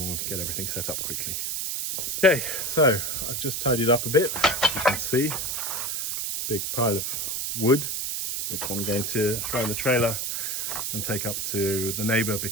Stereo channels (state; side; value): noise; right; hiss, 2 dB below the sound